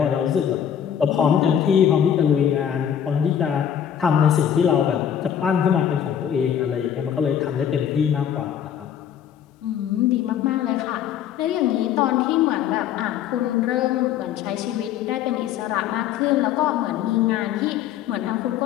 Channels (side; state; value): right; quieter; 9.3 dB